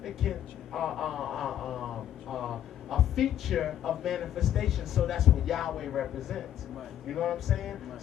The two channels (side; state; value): right; quieter; 11.0 dB